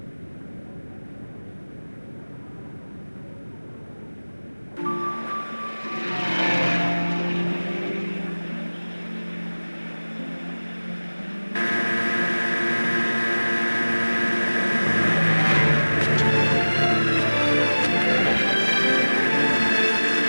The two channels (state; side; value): inverted; both; correlation -1.00